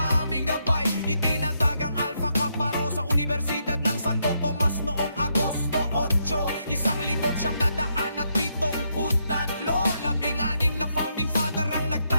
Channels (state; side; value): inverted; both; correlation -0.78